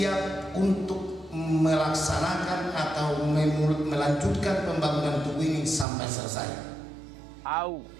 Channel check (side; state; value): left; drops out; at 5.9 s